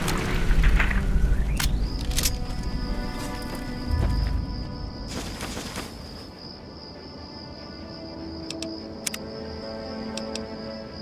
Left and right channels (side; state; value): both; identical; correlation 1.00